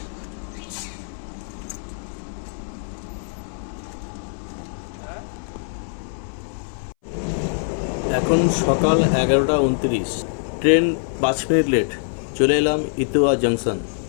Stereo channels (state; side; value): silent; right; 61 dB below the other